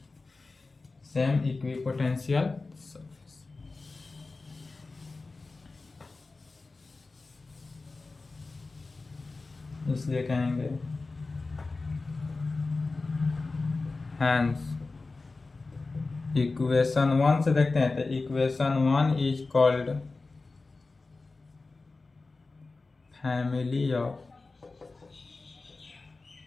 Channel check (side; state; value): right; quieter; 3.7 dB